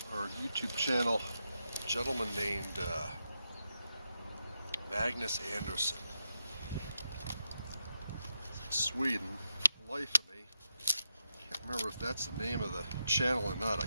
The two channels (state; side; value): inverted; both; correlation -0.86